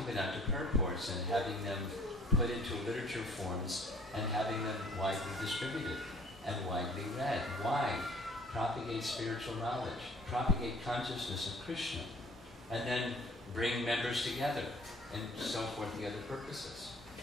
purports and having them put into literature forms and having them widely distributed and widely read. Why? Propagate spiritual knowledge, propagate consciousness of Krishna, and then bring members together, and so forth, the other purposes.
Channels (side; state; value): both; normal; correlation 0.54